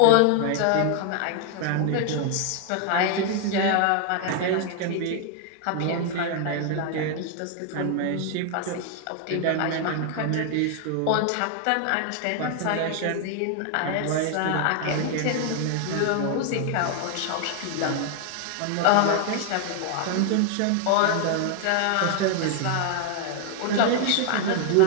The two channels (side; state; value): both; different; correlation 0.00